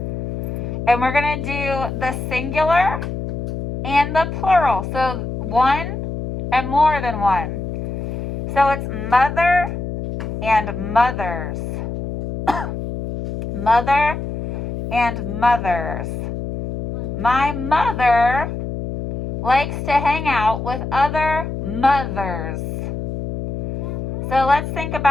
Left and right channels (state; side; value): noise; left; hum, 4 dB below the sound